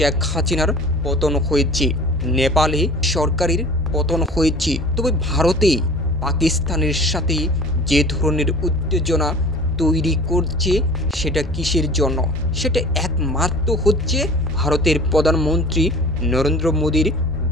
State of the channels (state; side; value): normal; both; correlation 0.42